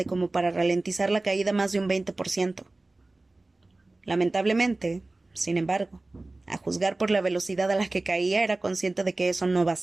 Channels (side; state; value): left; quieter; 3.0 dB